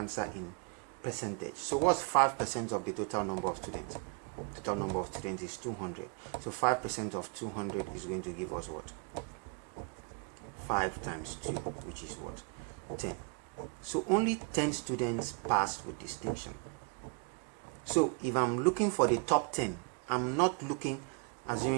in percentage. So what's 5% of the total number of students? Total number of students is 200. So 5% of 200 is going to give us what? 5 times 2, which is what? 10. So only 10 students passed with distinction. So if I'm looking for the top 10, I'm not looking,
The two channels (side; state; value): left; quieter; 34.3 dB